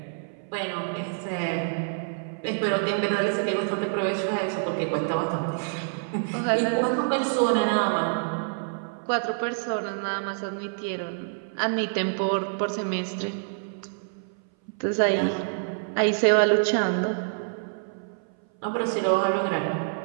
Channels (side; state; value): left; silent; 58 dB below the other